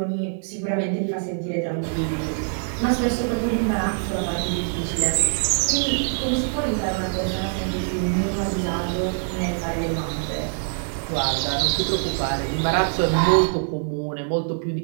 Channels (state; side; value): silent; left; digital silence